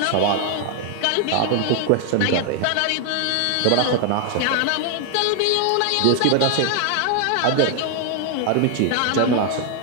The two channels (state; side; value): different; both; correlation 0.00